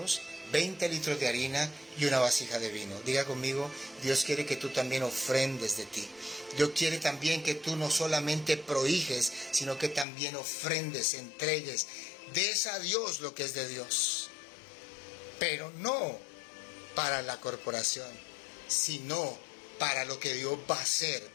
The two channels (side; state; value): right; drops out; at 10.1 s